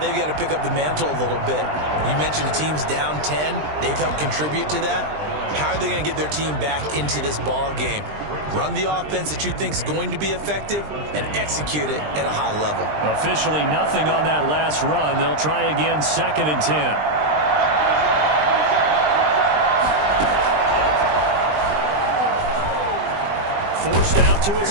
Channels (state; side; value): late; left; 20 ms